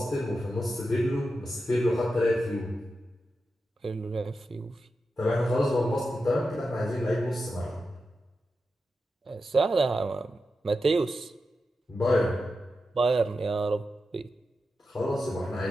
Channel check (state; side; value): normal; both; correlation 0.89